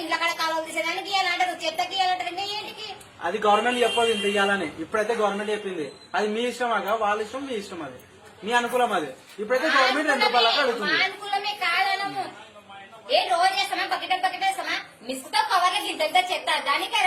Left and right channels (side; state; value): both; identical; correlation 1.00